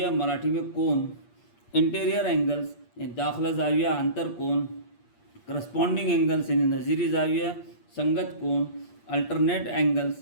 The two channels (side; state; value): right; late; 8.5 ms